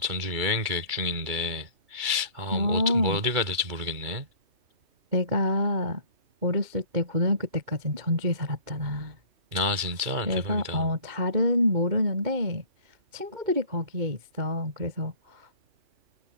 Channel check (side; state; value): left; late; 2.3 ms